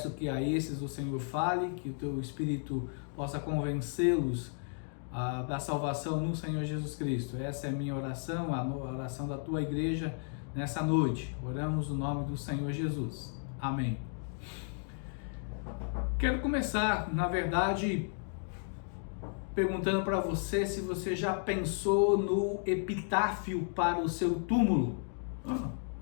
que a esses o Senhor fale, que o Teu Espírito possa convencê-los da salvação no Senhor Jesus Cristo. Essa é a minha oração, a oração da Tua igreja nessa noite. Oramos no nome do Senhor Jesus. Amém. Quero começar, na verdade, perguntando para você se você já pensou no epitáfio para o seu túmulo.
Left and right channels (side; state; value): right; silent; 55 dB below the other